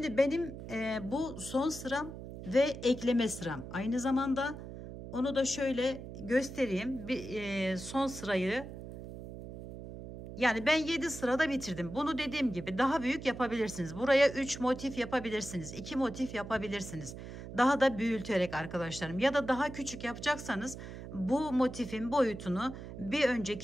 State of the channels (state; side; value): noise; right; hum, 11 dB below the sound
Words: benim bu son sıram ve ekleme sıram. Aynı zamanda onu da şöyle göstereyim. Son sırayı, yani ben 7 sırada bitirdim. Bunu dediğim gibi daha büyük yapabilirsiniz. Buraya 3 motif yapabilirsiniz. 2 motif yapabilirsiniz. Daha da büyüterek arkadaşlarım. Ya da daha küçük yapacaksanız bu motifin boyutunu bir